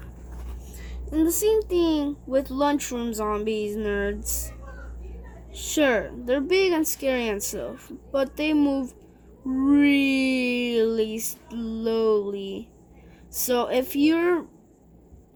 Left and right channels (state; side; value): identical; both; correlation 1.00